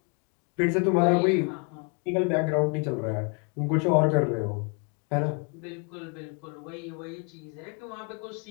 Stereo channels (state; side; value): quieter; right; 35.5 dB